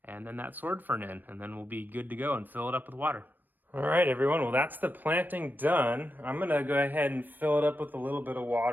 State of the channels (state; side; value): late; left; 0.090 ms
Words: and then that sword fern in, and then we'll be good to go and fill it up with water. All right, everyone. Well, that's the planting done. I'm going to go ahead and fill it up with a little bit of